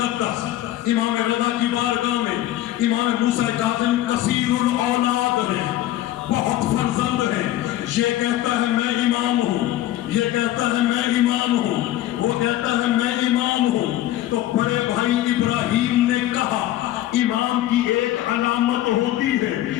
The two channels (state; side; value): quieter; right; 14.1 dB